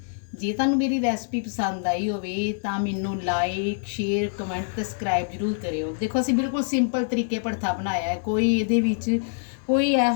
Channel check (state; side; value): silent; right; digital silence